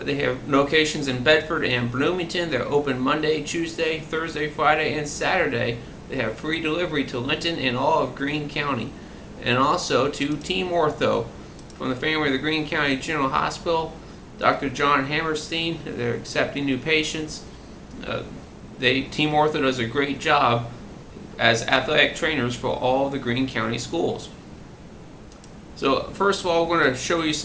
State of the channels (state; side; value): identical; both; correlation 1.00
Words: have locations in Bedford and Bloomington. They're open Monday, Tuesday, Thursday, Friday, and Saturday. They have free delivery to Linton and all of Greene County. And also to Team Ortho. From the family of the Greene County General Hospital, Dr. John Hammerstein. They're accepting new patients. Team Ortho does a great job as athletic trainers for all the Greene County schools. So first of all, we're going to show you